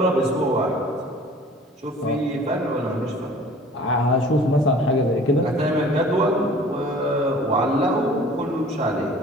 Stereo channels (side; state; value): both; normal; correlation 0.47